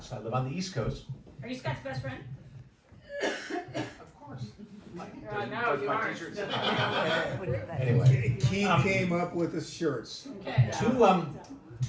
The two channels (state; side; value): identical; both; correlation 1.00